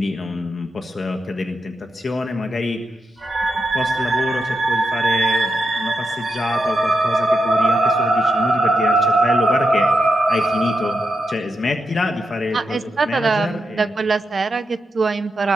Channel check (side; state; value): both; normal; correlation 0.87